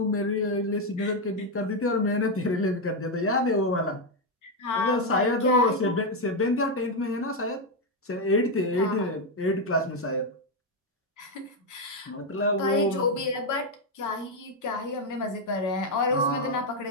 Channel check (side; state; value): both; normal; correlation 0.04